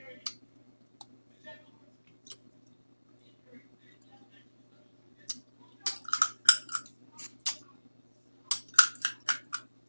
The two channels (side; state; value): both; inverted; correlation -1.00